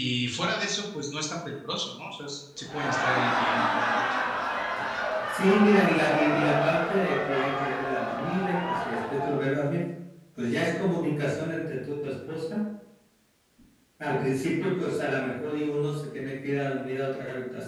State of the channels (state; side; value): identical; both; correlation 1.00